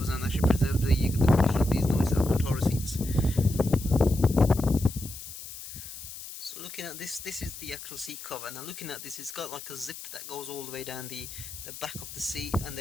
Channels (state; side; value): noise; left; hiss, 12 dB below the sound